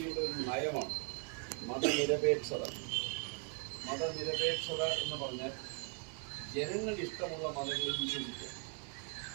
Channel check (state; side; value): quieter; left; 37.2 dB